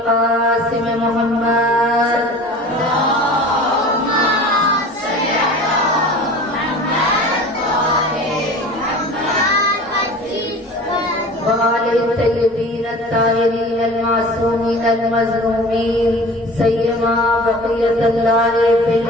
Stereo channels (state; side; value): normal; both; correlation 0.40